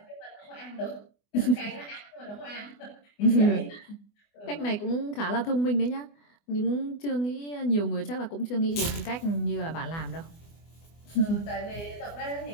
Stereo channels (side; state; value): right; late; 24 ms